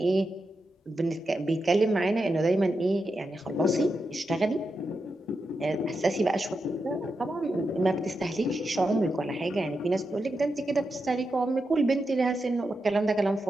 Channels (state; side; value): normal; both; correlation 0.87